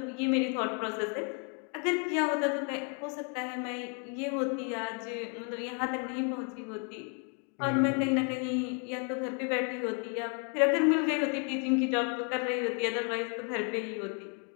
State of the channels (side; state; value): right; quieter; 39.0 dB